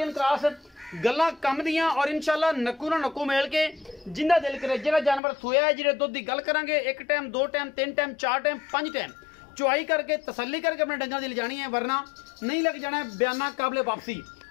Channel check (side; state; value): right; drops out; at 5.2 s